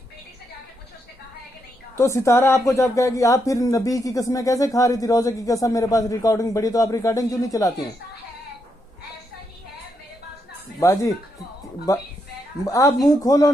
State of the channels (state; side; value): normal; both; correlation 0.80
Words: तो सितारा आपको जब कहेगी, आप फिर नबी की कसमें कैसे खा रही थी, रोजे की कसम मेरे पास रिकॉर्डिंग पड़ी, तो आप रिकॉर्डिंग क्यों नहीं चलाती हैं? बाजी आप मुंह खोलो